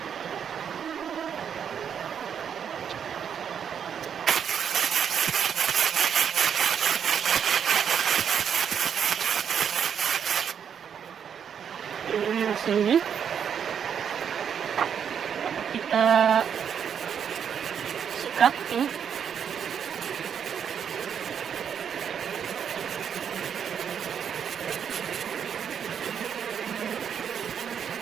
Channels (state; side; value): quieter; left; 7.9 dB